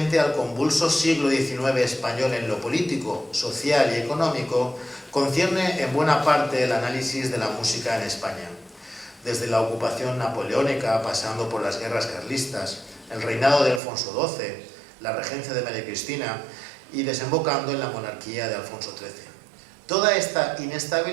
al convulso siglo XIX español en lo político, social y económico, concierne en buena parte el análisis de la música en España, desde la ocupación napoleónica, pasando por las guerras carlistas, el reinado de Alfonso XII, la regencia de María Cristina y desembocando en la monarquía de Alfonso XIII. Toda esta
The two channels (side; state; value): left; drops out; at 13.8 s